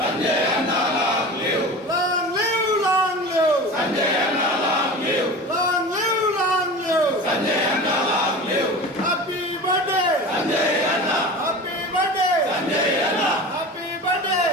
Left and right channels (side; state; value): both; normal; correlation 0.33